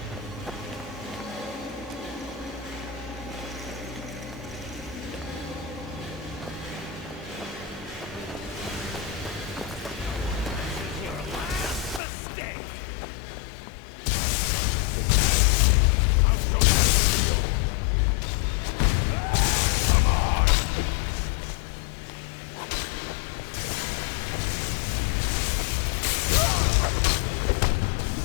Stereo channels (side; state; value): right; drops out; at 12.0 s